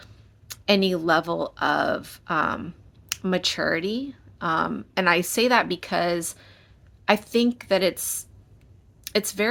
any level of maturity And I say that because I think that it's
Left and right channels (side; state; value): both; identical; correlation 1.00